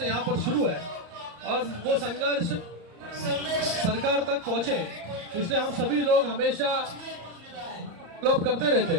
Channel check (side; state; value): left; late; 34 ms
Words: यहाँ पर शुरू है और वो संघर्ष सरकार तक पहुंचे, इसलिए हम सभी लोग हमेशा फॉलोअप करते रहते